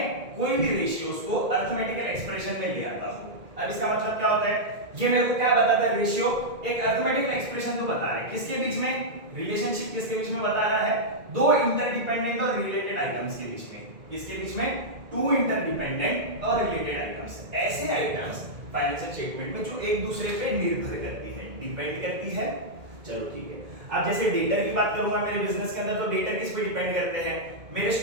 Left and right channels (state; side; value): late; left; 2.1 ms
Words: कोई भी रेशियोज को अरिथमेटिकल एक्सप्रेशन में ले आता हूं। अब इसका मतलब क्या होता है, ये मेरे को क्या बताता है, रेशियो एक अरिथमेटिकल एक्सप्रेशन तो बता रहा है, किसके बीच में, रिलेशनशिप किसके बीच में बता रहा है, दो इंटरडिपेंडेंट और रिलेटेड आइटम्स के बीच में, किसके बीच में, टू इंटरडिपेंडेंट और रिलेटेड आइटम्स, ऐसे आइटम्स फाइनेंशियल स्टेटमेंट में जो एक दूसरे पे निर्भर करती है, डिपेंड करती है। चलो ठीक है, अब जैसे डेटर की बात करूंगा मेरे बिजनेस के अंदर, तो डेटर किस पे डिपेंड करते हैं, मेरे